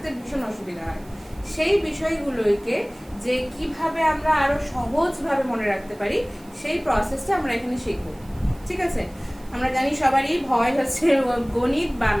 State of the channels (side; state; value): right; noise; hiss, 27 dB below the sound